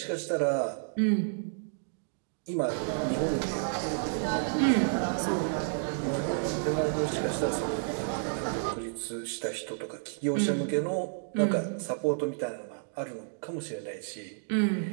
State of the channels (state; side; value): silent; left; digital silence